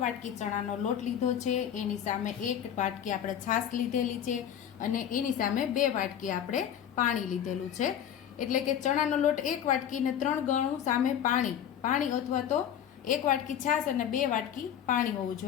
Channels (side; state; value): right; quieter; 9.6 dB